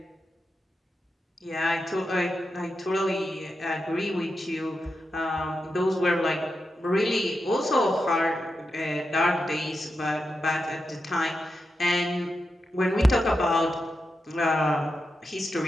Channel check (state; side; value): normal; both; correlation 0.88